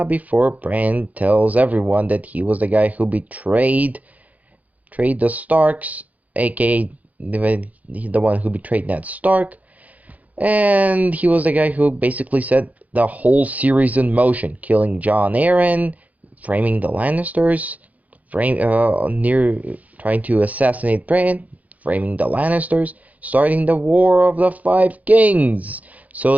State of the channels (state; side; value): late; left; 0.075 ms